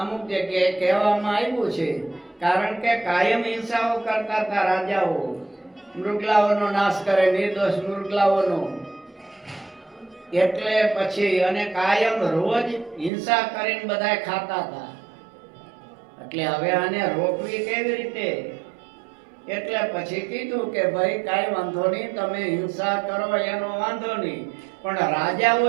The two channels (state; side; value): drops out; left; at 13.1 s